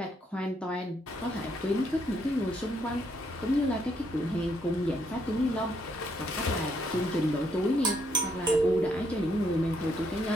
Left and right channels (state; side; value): normal; both; correlation 0.73